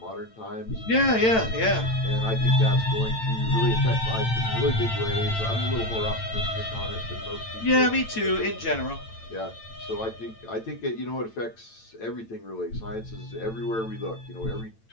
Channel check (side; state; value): right; late; 8.9 ms